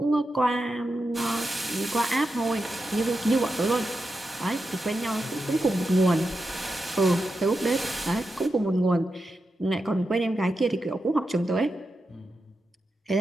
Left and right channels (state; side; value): normal; both; correlation 0.88